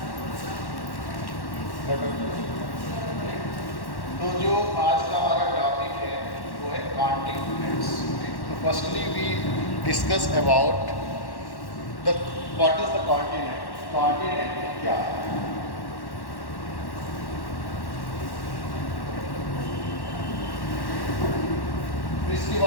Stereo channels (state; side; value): late; right; 1.1 ms